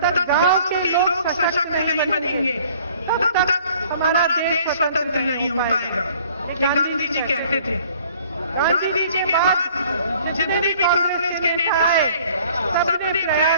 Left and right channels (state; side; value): inverted; both; correlation -0.55